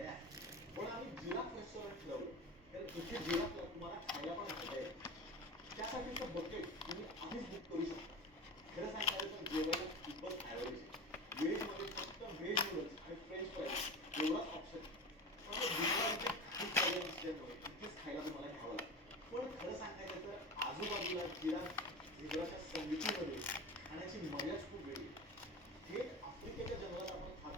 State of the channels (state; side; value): normal; both; correlation 0.30